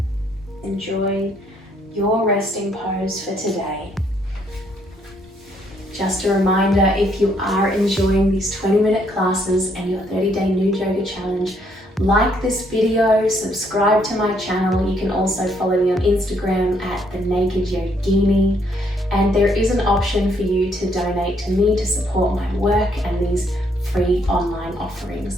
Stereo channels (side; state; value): both; normal; correlation 0.70